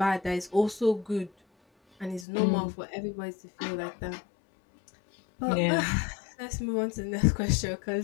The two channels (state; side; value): drops out; right; at 2.2 s